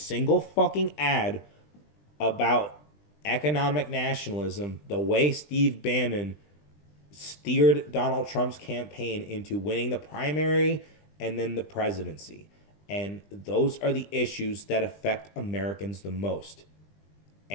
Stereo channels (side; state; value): right; late; 20 ms